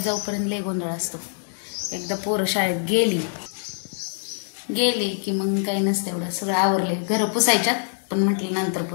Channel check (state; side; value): silent; right; 62 dB below the other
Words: जाऊपर्यंत लय गोंधळ असतो। एकदा पोरं शाळेत गेली की मग काही नसतं, एवढं सगळं आवरले। घर पुसायच्यात, पण म्हटलं नंतर